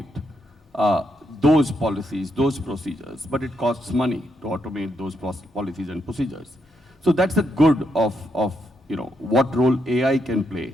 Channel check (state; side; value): normal; both; correlation 0.79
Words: those policies, those procedures, but it costs money to automate those policies and procedures. So that's the good of what role AI can